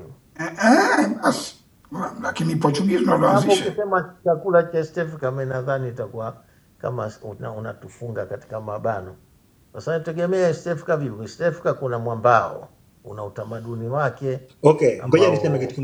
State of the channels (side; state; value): both; identical; correlation 1.00